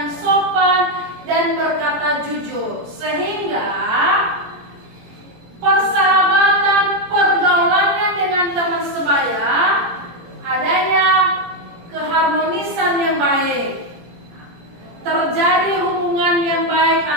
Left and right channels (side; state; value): left; late; 17 ms